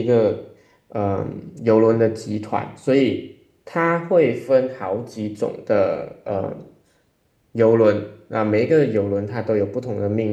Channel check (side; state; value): both; identical; correlation 1.00